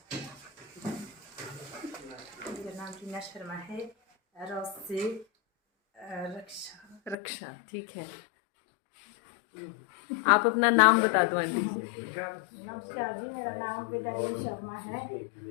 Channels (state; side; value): drops out; right; at 7.2 s